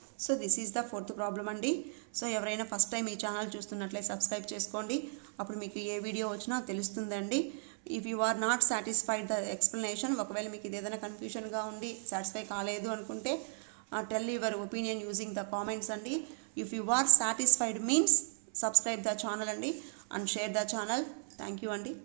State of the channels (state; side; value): silent; left; 54 dB below the other